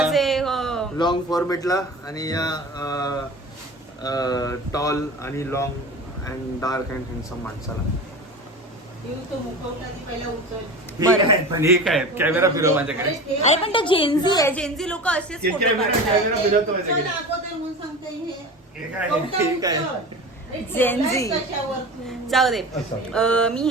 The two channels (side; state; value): both; normal; correlation 0.33